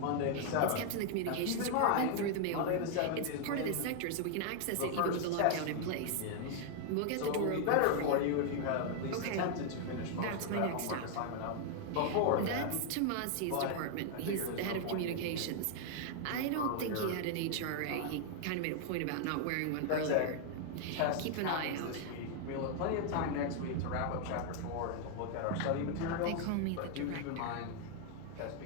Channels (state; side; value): different; both; correlation 0.00